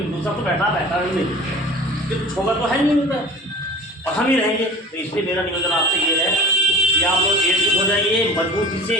दूसरा तो बैठा नहीं, तो छोगा तो है नहीं उनका, और हम ही रहेंगे। तो इसलिए मेरा निवेदन आपसे ये है कि आप लोग एकजुट हो जाइए, मजबूती से,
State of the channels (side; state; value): both; normal; correlation 0.39